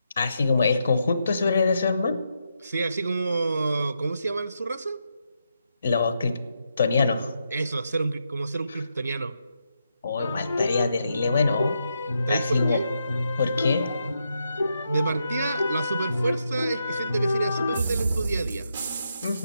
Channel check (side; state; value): both; inverted; correlation -0.82